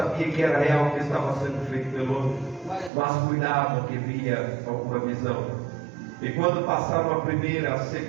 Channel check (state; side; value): drops out; left; at 2.9 s